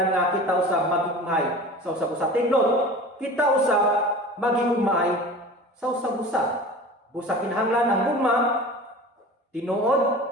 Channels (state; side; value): normal; both; correlation 0.37